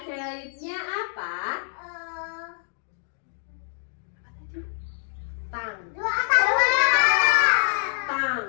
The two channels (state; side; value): silent; right; 61 dB below the other